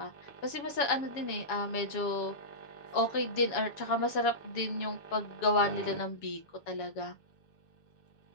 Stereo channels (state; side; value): late; right; 7.2 ms